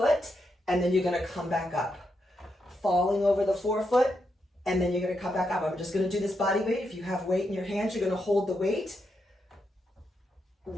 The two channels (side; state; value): both; normal; correlation 0.83